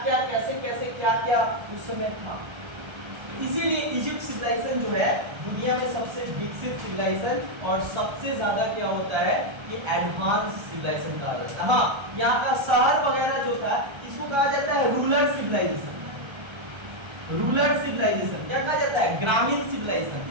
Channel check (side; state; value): left; late; 1.3 ms